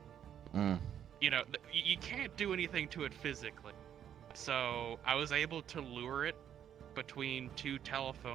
you can't do anything to it physically. So I was able to lure it between 2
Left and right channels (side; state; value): left; quieter; 9.5 dB